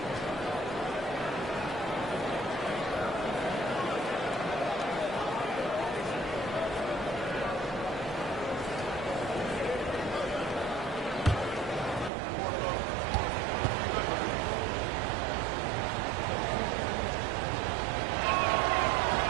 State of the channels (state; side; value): drops out; left; at 12.1 s